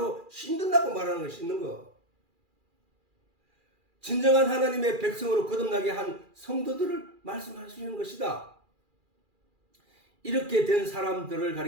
씻는다고 말하는 거야. 씻는 거. 진정한 하나님의 백성으로 거듭나게 한 성도들을 말씀하시는 것이다. 이렇게 된 사람들을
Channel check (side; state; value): left; late; 2.4 ms